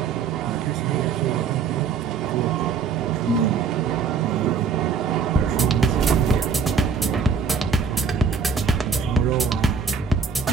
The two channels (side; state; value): left; quieter; 5.9 dB